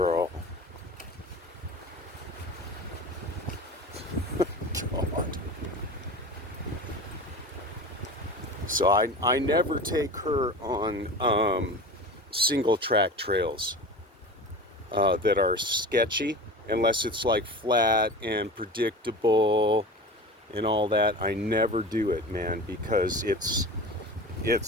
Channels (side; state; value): both; normal; correlation 0.33